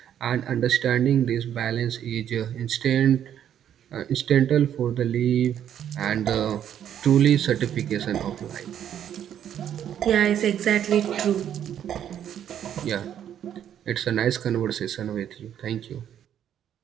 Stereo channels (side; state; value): left; quieter; 9.9 dB